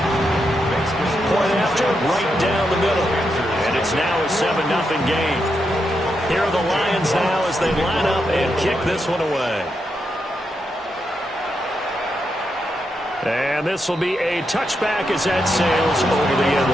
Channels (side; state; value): both; normal; correlation 0.83